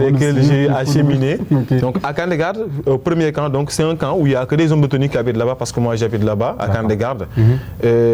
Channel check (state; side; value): identical; both; correlation 1.00